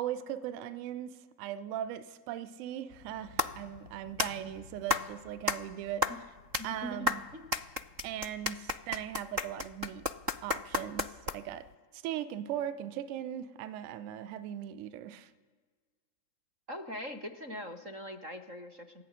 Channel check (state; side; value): late; left; 3.8 ms